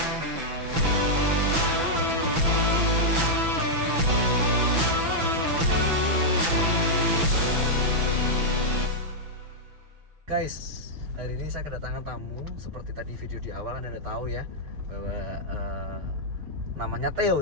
Guys, hari ini saya kedatangan tamu. Seperti tadi video di awal Anda tahu ya bahwa namanya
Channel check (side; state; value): left; late; 5.9 ms